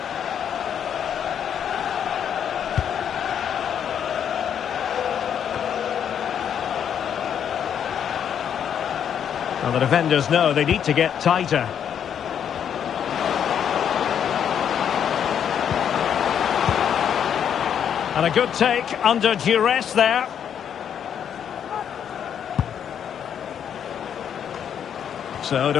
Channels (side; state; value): right; quieter; 8.6 dB